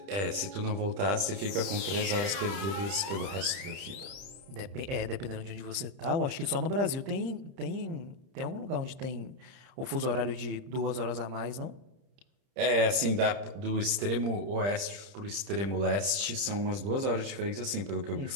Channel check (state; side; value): late; left; 30 ms